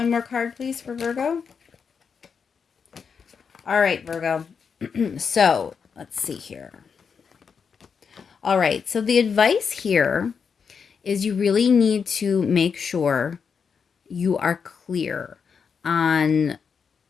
more card, please, for Virgo. All right, Virgo. So, let's see here. All right, so the advice here is you really need to make sure you are clear on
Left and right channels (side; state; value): right; quieter; 6.2 dB